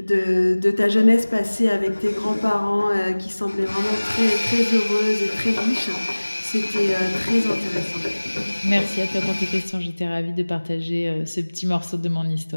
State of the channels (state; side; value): inverted; both; correlation -1.00